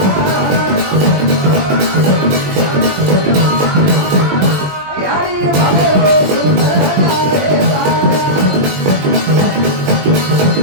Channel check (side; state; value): left; late; 20 ms